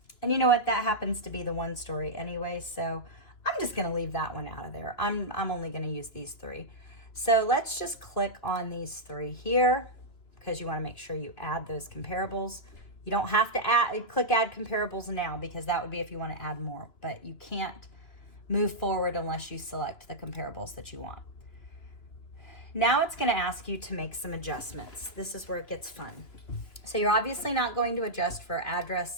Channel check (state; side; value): late; right; 2.9 ms